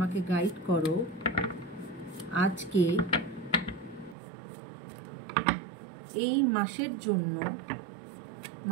গাইড করো আজকে এই মাসের জন্য,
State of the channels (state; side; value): drops out; left; at 4.2 s